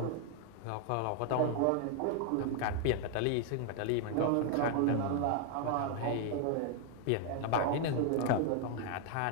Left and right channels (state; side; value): different; both; correlation 0.00